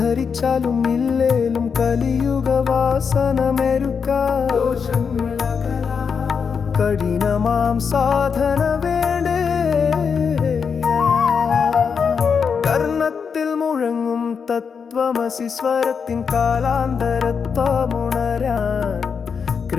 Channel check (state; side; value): quieter; right; 6.1 dB